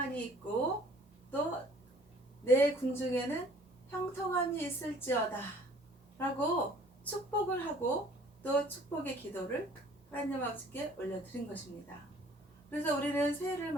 있고 또 내 궁중에는 형통함이 있을지어다 라고 축복을 하고 또 축복의 기도를 하나님 아버지께 올려드린 것입니다. 그래서 우리는 새해를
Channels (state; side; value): normal; both; correlation 0.54